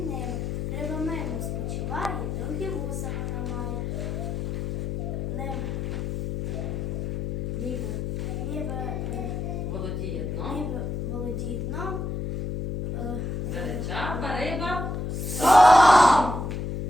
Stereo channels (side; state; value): left; noise; hum, 3 dB below the sound